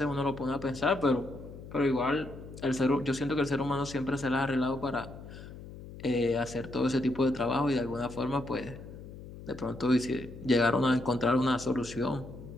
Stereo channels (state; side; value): noise; left; hum, 14 dB below the sound